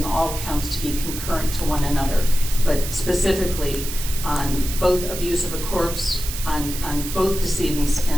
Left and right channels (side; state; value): right; noise; hiss, 8 dB below the sound